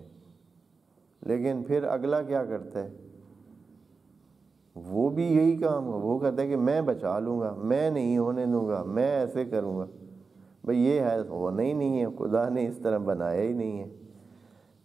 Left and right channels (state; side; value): quieter; left; 4.6 dB